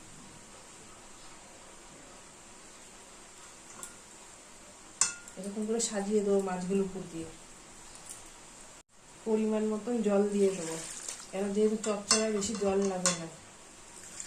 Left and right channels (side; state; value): both; identical; correlation 1.00